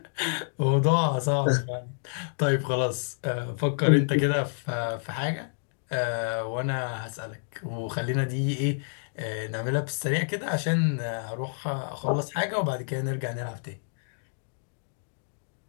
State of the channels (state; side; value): silent; right; digital silence